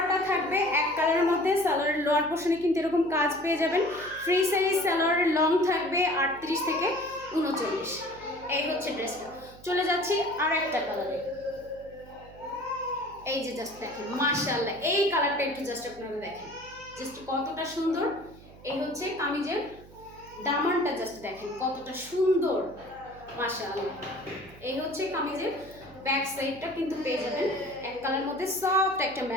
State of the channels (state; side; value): noise; right; hum, 21 dB below the sound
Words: থাকবে এক কালারের মধ্যে। সালোয়ারের লোয়ার পোর্শনে কিন্তু এরকম কাজ পেয়ে যাবেন। ফ্রি সাইজ সালোয়ারের লং থাকবে 38 থেকে 39। এই হচ্ছে ড্রেসটা। চলে যাচ্ছি আর একটা কালারে। এই যে জাস্ট দেখেন মাশাআল্লাহ, এই কালারটা একটু জাস্ট আপনারা দেখেন, জাস্ট কতটা সুন্দর। এই হচ্ছে কামিজের দামানটা, জাস্ট দেখেন কতটা সুন্দর, মাশাআল্লাহ। এই হচ্ছে কামিজের ব্যাক সাইডটা কিন্তু পেয়ে যাবেন এক কালার মধ্যে সফট একটা